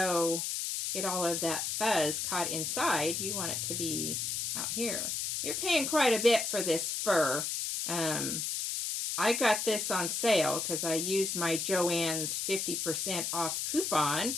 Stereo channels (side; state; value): left; noise; hiss, 1 dB below the sound